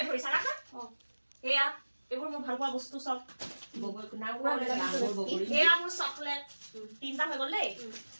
ধৰিছা ৰাখা এয়া এবোৰ মোৰ ভাল পোৱা বস্তু সব বগল নাম বগল এয়া মোৰ চকলেট তিনটা হৈ গল দেই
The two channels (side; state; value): both; inverted; correlation -1.00